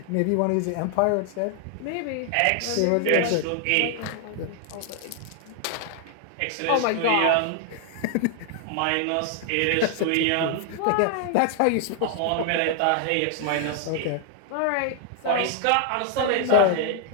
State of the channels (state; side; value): different; both; correlation 0.00